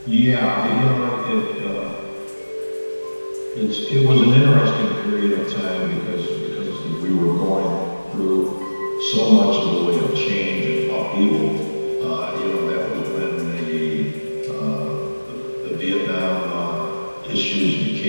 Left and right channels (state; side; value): inverted; both; correlation -1.00